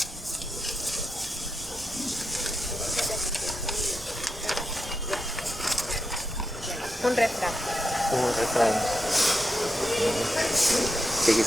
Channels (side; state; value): both; normal; correlation 0.87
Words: Un refrán. Un refrán. Que